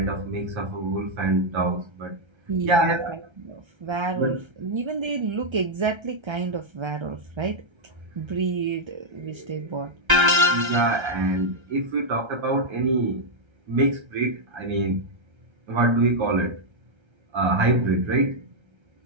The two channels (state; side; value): late; left; 1.3 ms